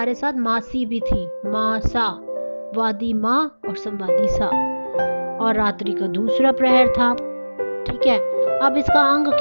साथ मासी भी थी, मासा, वादी माँ और संवादी सा, और रात्रि का दूसरा प्रहर था। ठीक है, अब इसका अंग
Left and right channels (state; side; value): inverted; both; correlation -1.00